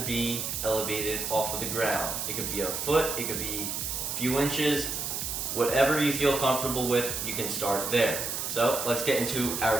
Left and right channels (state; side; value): noise; right; hiss, 3 dB below the sound